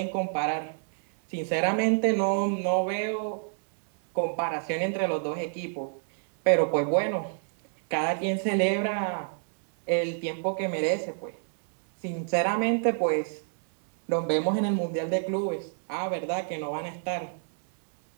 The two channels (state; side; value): silent; left; 58 dB below the other